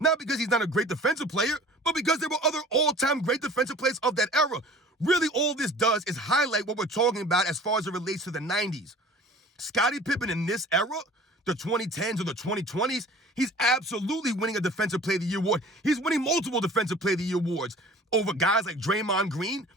because he's not a great defensive player, but because there were other all-time great defensive players of that era. Really, all this does is highlight what we're talking about as far as it relates to the 90s. Scottie Pippen in this era, the 2010s or the 2020s, he's absolutely winning a Defensive Player of the Year award. He's winning multiple Defensive Player of the Year awards over guys like Draymond Green,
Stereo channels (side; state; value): both; normal; correlation 0.46